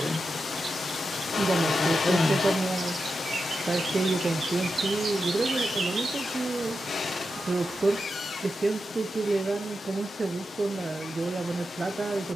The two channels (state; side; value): normal; both; correlation 0.89